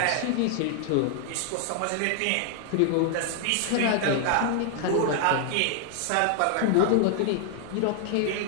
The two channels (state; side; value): different; both; correlation 0.00